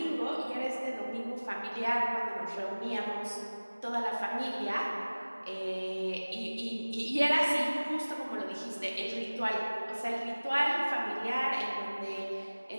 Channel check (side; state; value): both; inverted; correlation -1.00